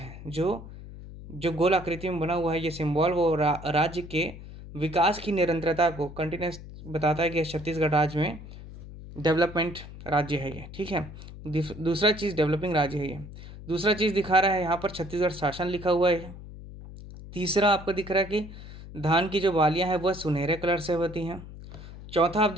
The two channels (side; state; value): left; noise; hum, 14 dB below the sound